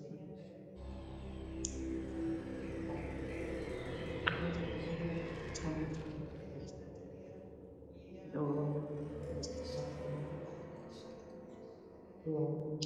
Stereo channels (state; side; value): identical; both; correlation 1.00